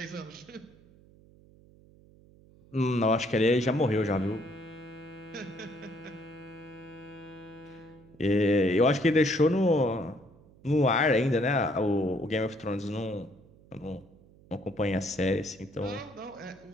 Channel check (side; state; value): right; noise; hum, 26 dB below the sound